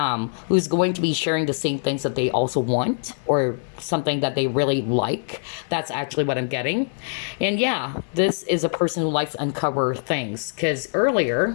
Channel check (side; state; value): right; silent; 62 dB below the other